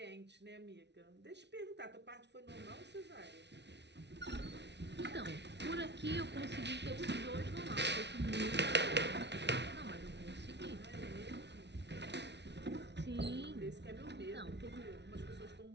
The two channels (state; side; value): late; left; 0.50 ms